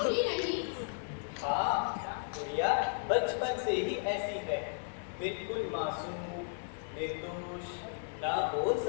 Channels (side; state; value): right; silent; 55 dB below the other